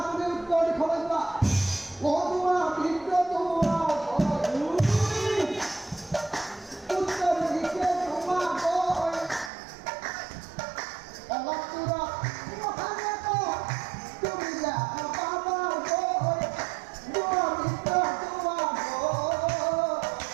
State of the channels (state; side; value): drops out; left; at 9.5 s